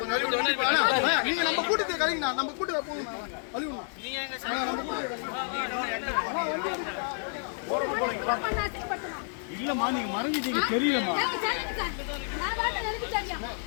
நீங்க நம்ம கூட்டத்தை கலைங்கண்ணா, நம்ம கூட்டத்தை போங்கண்ணா, கழிவுண்ணா. இல்லம்மா நீங்க மறந்துட்டீங்க தெரியலமா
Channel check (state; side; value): silent; right; 58 dB below the other